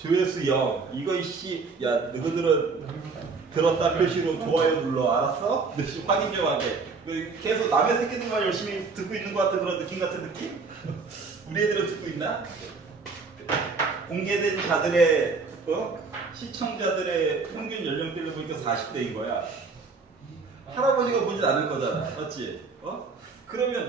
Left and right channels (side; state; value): left; quieter; 4.5 dB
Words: 0. 이거 이씨, 야 너희들은 들었다 표시로 좋아요 눌러. 알았어? 확인 좀 하게. 계속 남의 새끼들만 열심히 듣고 있는 것 같은 그런 느낌 같은 느낌? 우리 애들은 듣고 있나? 공개된 자들의 시청자들의 평균 연령대를 보니까 40대인 거야. 할아버지가 보진 않을 거잖아. 맞지? 그러면